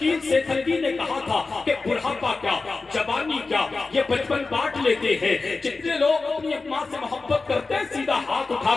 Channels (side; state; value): right; quieter; 3.9 dB